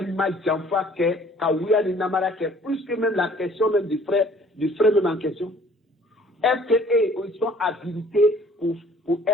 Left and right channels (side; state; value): both; normal; correlation 0.55